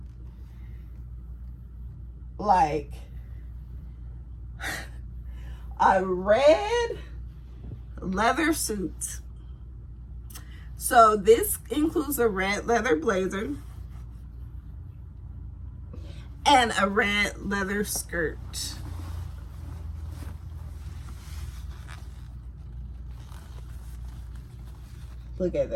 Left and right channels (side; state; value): both; identical; correlation 1.00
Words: like a red leather suit. So this includes a red leather blazer and a red leather skirt. Look at